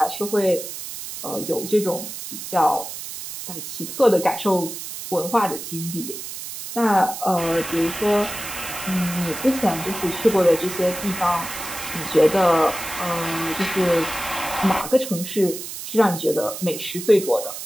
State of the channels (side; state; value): right; noise; hiss, 9 dB below the sound